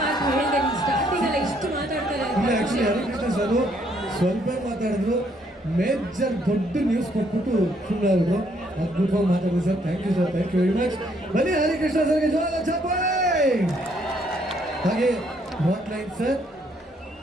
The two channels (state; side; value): normal; both; correlation 0.69